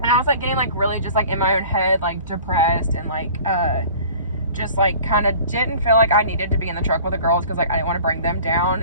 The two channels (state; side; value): inverted; both; correlation -0.46